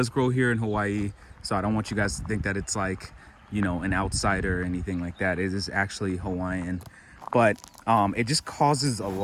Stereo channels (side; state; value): both; identical; correlation 1.00